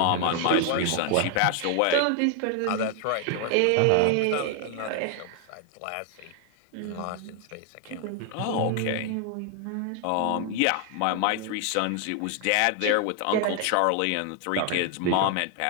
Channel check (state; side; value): different; both; correlation 0.00